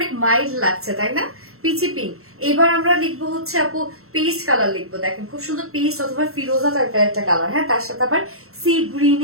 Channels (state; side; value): late; left; 0.63 ms